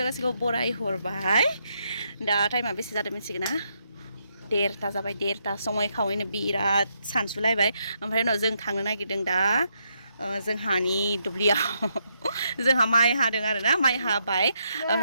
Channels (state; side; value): inverted; both; correlation -0.78